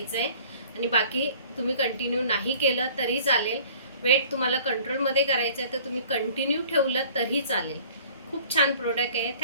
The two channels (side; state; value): both; inverted; correlation -0.50